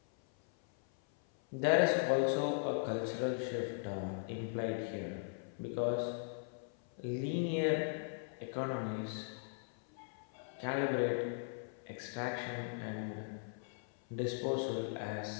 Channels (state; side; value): silent; right; 52 dB below the other